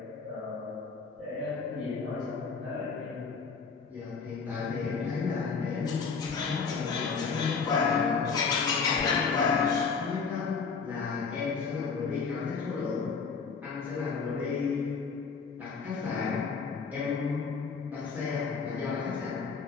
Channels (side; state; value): right; quieter; 5.2 dB